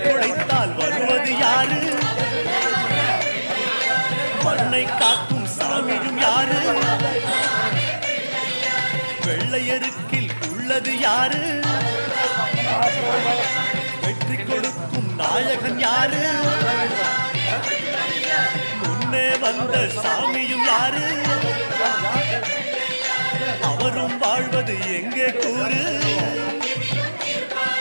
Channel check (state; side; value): inverted; both; correlation -1.00